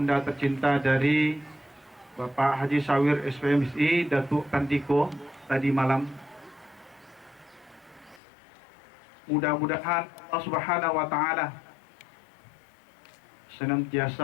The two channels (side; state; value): right; drops out; at 8.2 s